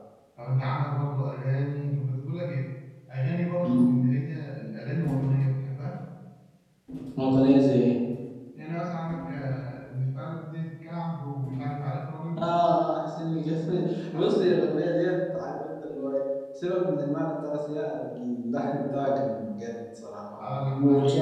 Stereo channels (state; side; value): identical; both; correlation 1.00